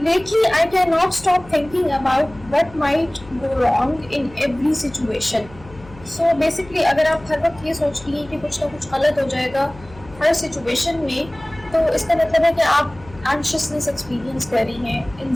I can not stop thinking about what might go wrong in every situation. So basically अगर आप हर वक्त ये सोच रही हैं कि कुछ ना कुछ गलत हो जाएगा हर सिचुएशन में, तो इसका मतलब है कि आप एंशियसनेस एक्सपीरियंस कर रही हैं।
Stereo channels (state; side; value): noise; left; hum, 20 dB below the sound